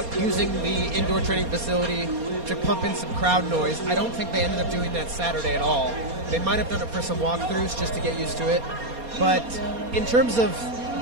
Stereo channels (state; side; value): late; left; 4.2 ms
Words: using the indoor training facility to pump in some crowd noise. I don't think they ended up doing that Saturday at all. They might have done it for some walkthroughs just to get used to it. But in terms of